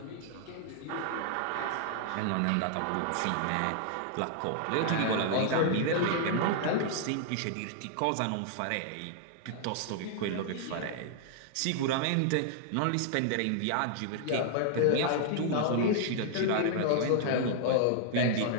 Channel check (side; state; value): both; different; correlation -0.01